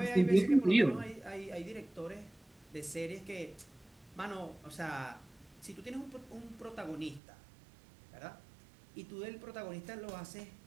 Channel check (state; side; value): drops out; left; at 7.2 s